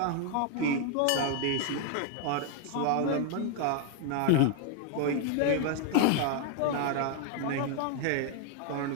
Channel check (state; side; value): different; both; correlation 0.00